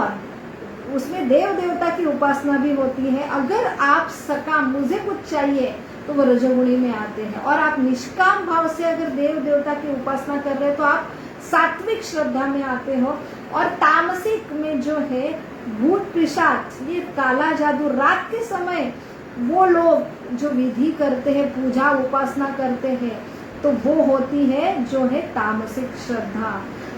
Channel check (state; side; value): identical; both; correlation 1.00